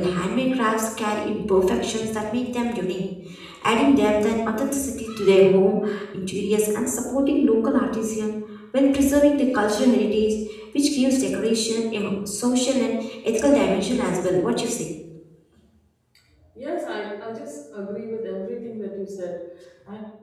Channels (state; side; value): identical; both; correlation 1.00